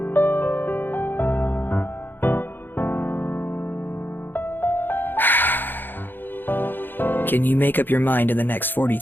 Can you make up your mind in the next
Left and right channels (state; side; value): late; right; 0.094 ms